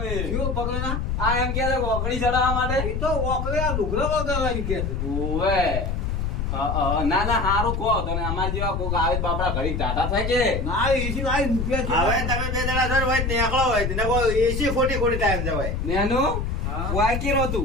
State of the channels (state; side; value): noise; left; rumble, 1 dB below the sound